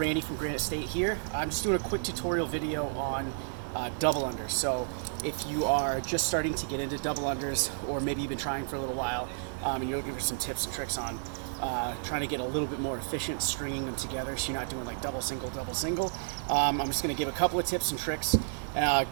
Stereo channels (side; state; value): left; silent; digital silence